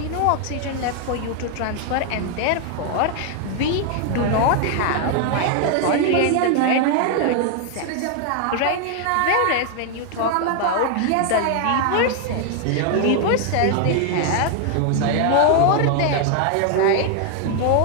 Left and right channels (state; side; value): different; both; correlation 0.00